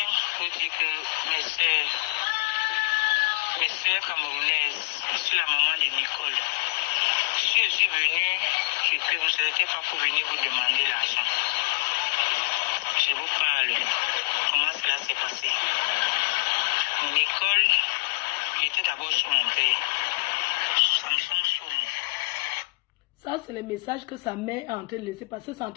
vous dire que mes sœurs camerounaises, je suis la maman de Nicole. Je Si je suis venu, c'est que vous n'étiez pas pour venir vous demander l'argent. Je vous parle. Comment cela s'est passé? Nicole était d'abord sur mon père. Samson Soumou. Ça, c'est le message que sa mère est en train de laisser passer. C'est en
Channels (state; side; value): quieter; right; 25.8 dB